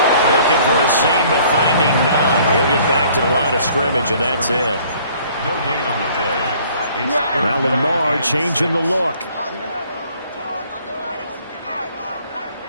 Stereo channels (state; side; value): inverted; both; correlation -0.57